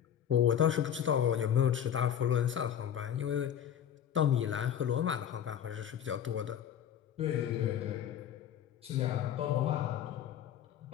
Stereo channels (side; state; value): right; quieter; 9.5 dB